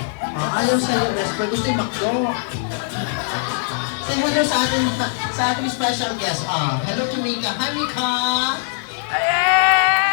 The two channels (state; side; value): silent; right; digital silence